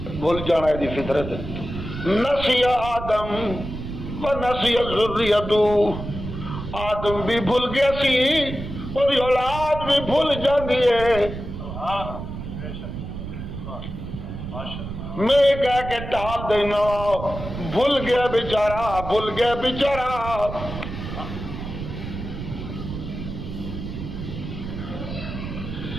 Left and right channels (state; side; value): noise; right; rumble, 8 dB below the sound